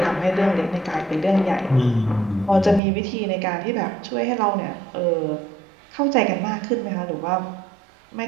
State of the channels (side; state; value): left; drops out; at 2.8 s